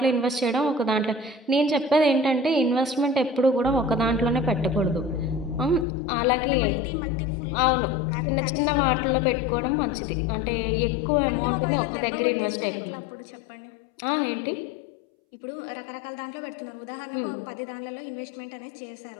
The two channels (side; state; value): right; drops out; at 5.9 s